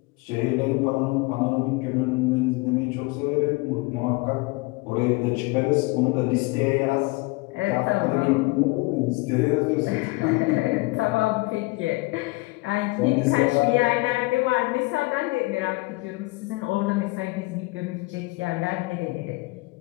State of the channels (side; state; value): right; quieter; 24.1 dB